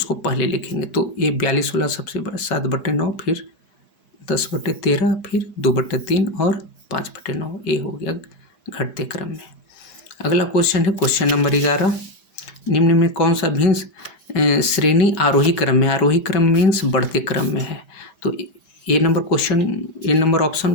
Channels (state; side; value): late; right; 5.3 ms